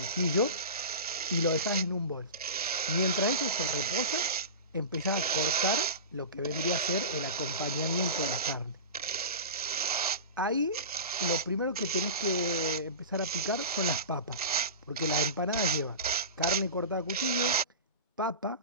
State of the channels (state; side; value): inverted; both; correlation -0.30